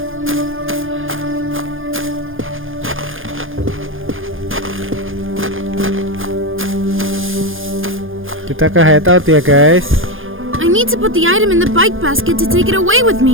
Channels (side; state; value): left; late; 0.59 ms